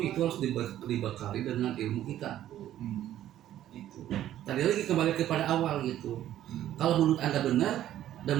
harus dibekali dengan ilmu kita. Itu. Tadi lagi kembali kepada awal gitu. Kalau menurut Anda benar dan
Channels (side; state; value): left; quieter; 12.3 dB